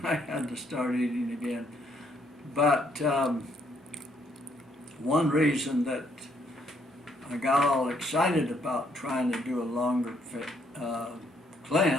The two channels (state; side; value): normal; both; correlation 0.70